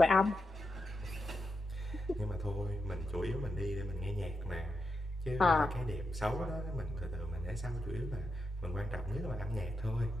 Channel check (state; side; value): normal; both; correlation 0.87